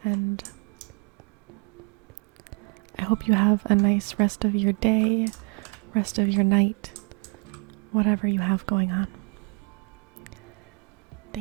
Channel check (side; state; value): left; quieter; 32.9 dB